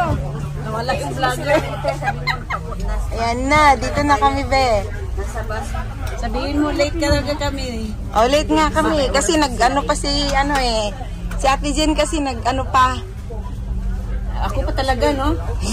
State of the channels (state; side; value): identical; both; correlation 1.00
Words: Nawala yung vlogger. Ayan na. Dito na kami, be. Nasa bus. Sabihin mo, late ka talaga kami. Oh, late nga kami. Kasi nag-ano pa si si Ate Jen kasi nag-ano pa. Ako pa talaga, no?